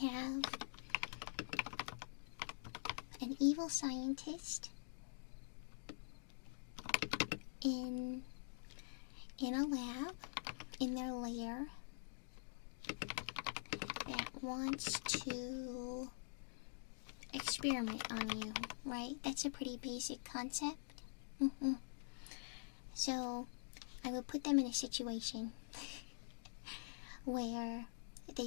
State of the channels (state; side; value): silent; right; digital silence